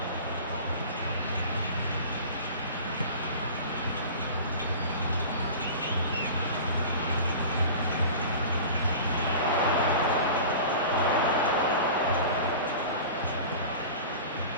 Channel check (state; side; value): inverted; both; correlation -0.37